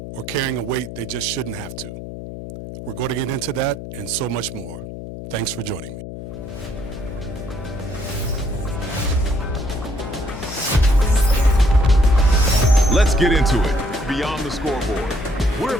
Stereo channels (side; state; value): left; noise; hum, 10 dB below the sound